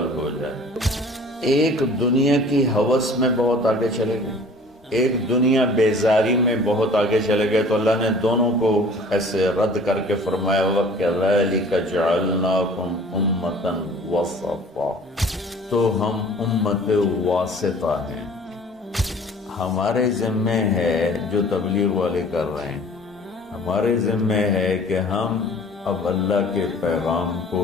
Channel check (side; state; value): both; normal; correlation 0.49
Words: ہو جائے۔ ایک دنیا کی ہوس میں بہت آگے چلے گئے، ایک دنیا بیزاری میں بہت آگے چلے گئے، تو اللہ نے دونوں کو ایسے رد کر کے فرمایا وَكَذَلِكَ جَعَلْنَاكُمْ أُمَّةً وَسَطًا، تو ہم امت واسطہ ہیں۔ ہمارے ذمے ہے جو تبلیغ والے کر رہے ہیں، ہمارے ذمے ہے کہ ہم اب اللہ کے پیغام کو